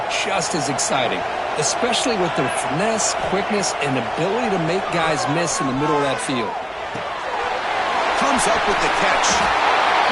just as exciting, especially with their finesse, quickness, and ability to make guys miss in the middle of that field. Comes up with the catch.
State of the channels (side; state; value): both; identical; correlation 1.00